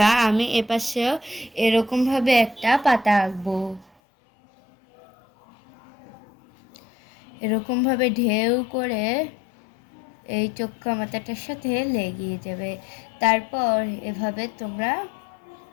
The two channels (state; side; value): drops out; right; at 3.9 s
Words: আমি এপাশেও এরকমভাবে একটা পাতা আঁকবো। এরকমভাবে ঢেউ করে এই চোক্কা মাথাটার সাথে লেগে যাবে। তারপর এভাবে তোমরা